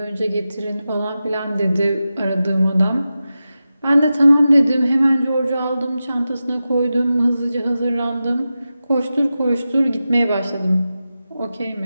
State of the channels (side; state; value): both; inverted; correlation -0.93